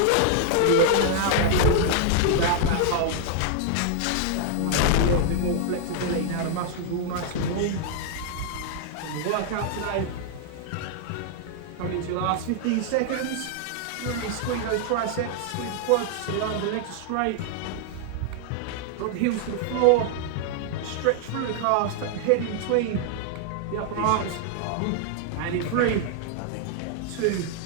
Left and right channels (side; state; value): both; different; correlation 0.00